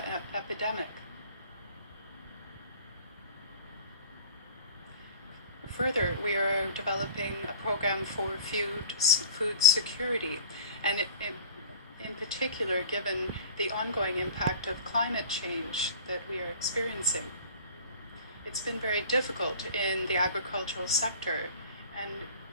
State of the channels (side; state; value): both; inverted; correlation -0.42